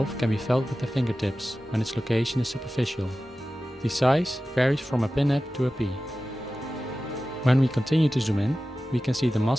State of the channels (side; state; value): both; normal; correlation 0.95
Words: can be felt with the fingertips when its location is superficial. The size varies from a pinhead to a pea. When we continue to zoom in, we can see the